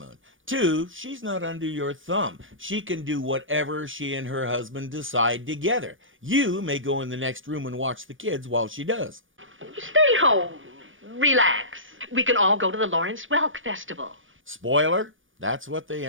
Two, she's not under your thumb. She can do whatever she and her husband decide together. You may go in the next room and watch the kids while she does. Stay home. Relax. We can all go to the Lawrence Welk Festival. Spoiler, that's what they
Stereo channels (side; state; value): left; late; 0.57 ms